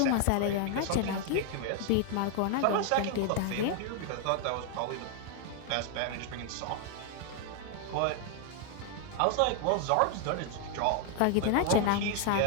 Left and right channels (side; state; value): both; different; correlation 0.00